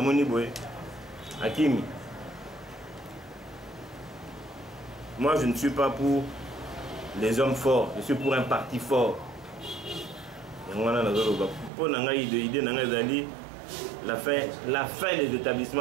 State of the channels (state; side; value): drops out; left; at 11.7 s